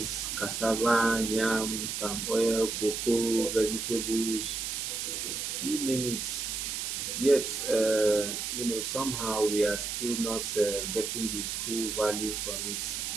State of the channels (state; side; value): noise; right; hiss, 3 dB below the sound